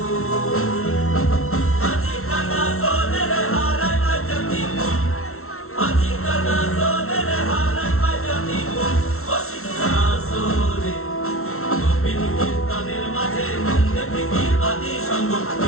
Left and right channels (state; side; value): late; right; 0.63 ms